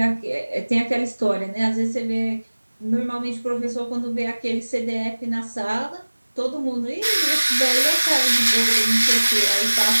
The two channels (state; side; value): inverted; both; correlation -1.00